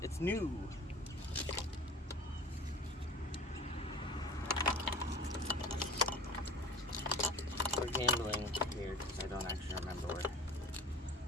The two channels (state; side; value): normal; both; correlation 0.42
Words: It's new. We're gambling here because I don't actually remember where.